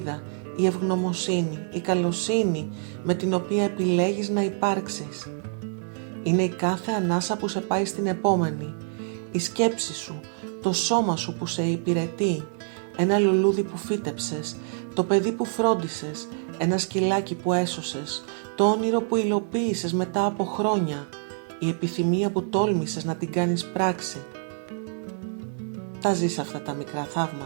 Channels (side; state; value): left; silent; digital silence